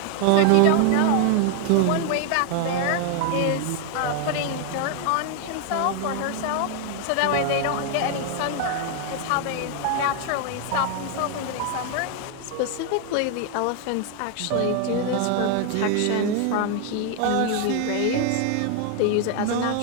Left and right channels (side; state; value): both; different; correlation 0.00